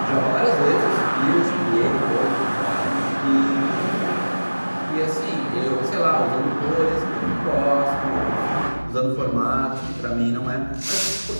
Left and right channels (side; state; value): both; inverted; correlation -1.00